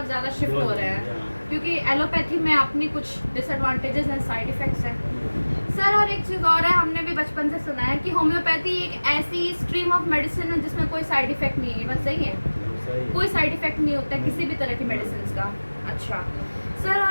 ज़्यादा शिफ्ट हो रहे हैं, क्योंकि एलोपैथी में अपनी कुछ डिसएडवांटेजेस हैं, साइड इफ़ेक्ट्स हैं सर। और एक चीज़ और है, हमने भी बचपन से सुना है कि होम्योपैथी एक ऐसी स्ट्रीम ऑफ मेडिसिन है जिसमें कोई साइड इफ़ेक्ट नहीं है, बस सही है, कोई साइड इफ़ेक्ट नहीं होता है किसी भी तरह की मेडिसिन का। अच्छा सर,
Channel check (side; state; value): both; inverted; correlation -1.00